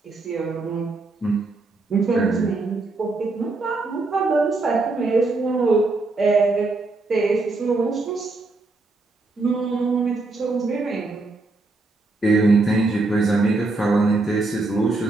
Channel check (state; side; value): quieter; left; 3.3 dB